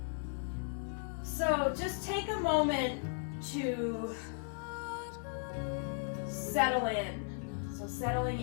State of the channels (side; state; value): right; silent; 54 dB below the other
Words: So just take a moment to settle in. So